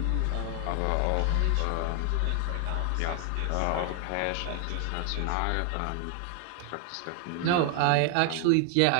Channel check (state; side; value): different; both; correlation 0.00